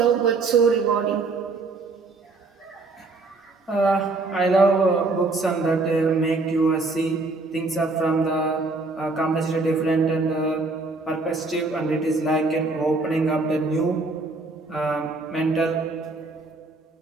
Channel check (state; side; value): quieter; left; 3.6 dB